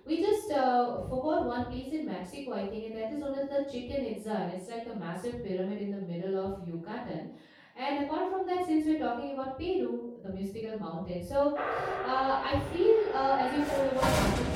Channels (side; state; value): both; identical; correlation 1.00